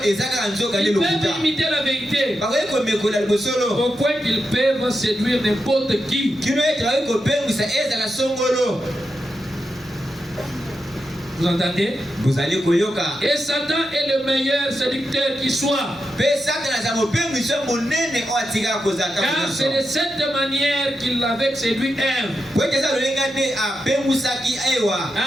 Ils peuvent imiter la vérité. Au point qu'ils peuvent séduire n'importe qui. Vous entendez? Et Satan est le meilleur séducteur qui soit. Car c'est de cette manière qu'il avait séduit Ève.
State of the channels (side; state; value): both; normal; correlation 0.87